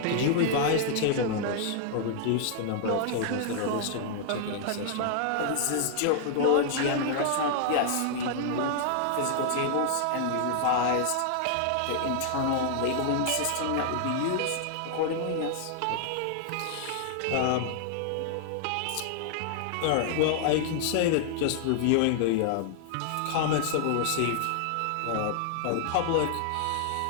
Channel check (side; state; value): both; different; correlation -0.01